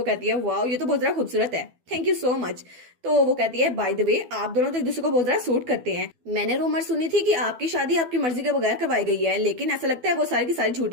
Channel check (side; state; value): left; late; 12 ms